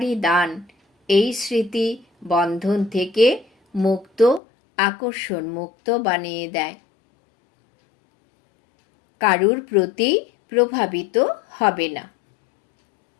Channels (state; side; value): drops out; right; at 4.4 s